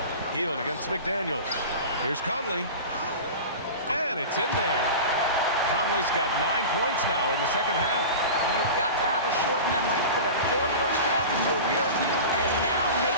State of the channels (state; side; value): inverted; both; correlation -0.32